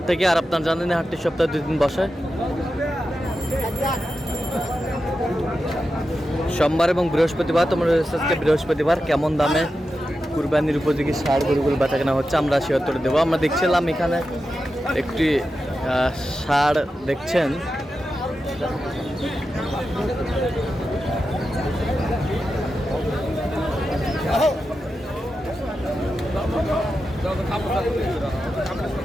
থেকে। আর আপনার জানেন হাটটি সপ্তাহে 2 দিন বসে, সোমবার এবং বৃহস্পতিবার। তোমরা আজকে বৃহস্পতিবার কেমন দামে কুরবানির উপযোগী ষাঁড় গরুগুলো বেচা কেনা হচ্ছে আমরা সে উত্তর দেবো। আমরা দেখছিলাম এখানে একটি ষাঁড় দেখছেন,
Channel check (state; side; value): normal; both; correlation 0.90